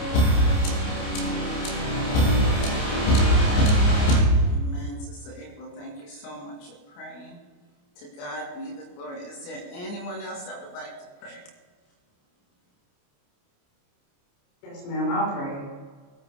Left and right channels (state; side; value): late; right; 28 ms